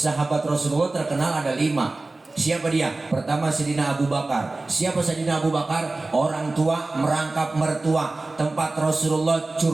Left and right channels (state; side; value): quieter; left; 3.2 dB